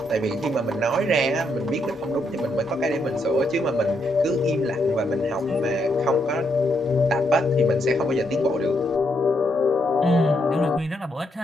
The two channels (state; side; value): normal; both; correlation 0.77